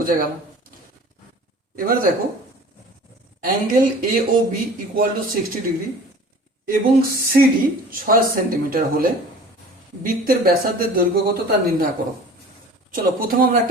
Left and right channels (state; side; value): normal; both; correlation 0.44